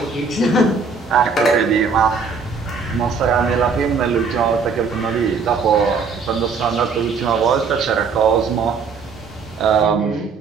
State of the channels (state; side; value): quieter; left; 5.1 dB